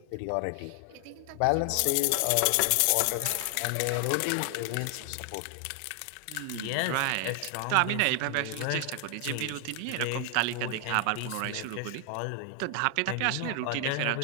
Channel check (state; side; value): different; both; correlation 0.00